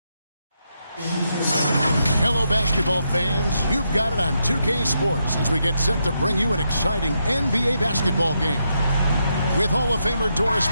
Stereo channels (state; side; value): inverted; both; correlation -0.82